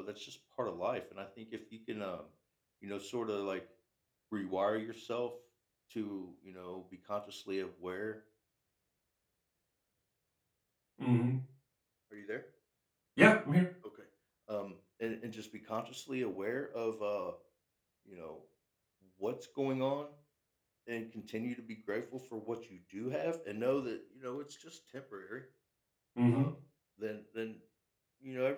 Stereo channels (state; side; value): identical; both; correlation 1.00